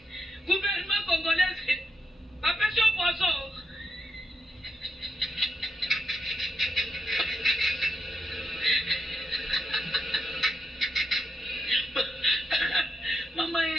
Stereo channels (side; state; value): both; normal; correlation 0.83